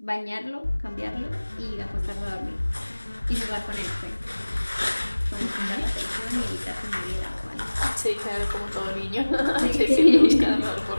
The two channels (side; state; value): both; inverted; correlation -1.00